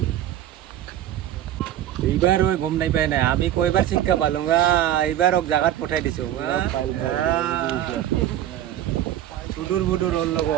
এইবাৰ গম নাই পাই নাই আমি কয়বাৰ শিক্ষা পালো এইবাৰ জাগাত পঠাই দিছো সুদূৰ বুদূৰ হ'ল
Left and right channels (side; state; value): left; quieter; 12.0 dB